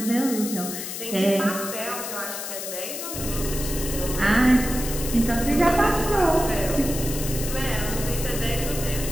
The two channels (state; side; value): noise; left; hiss, 7 dB below the sound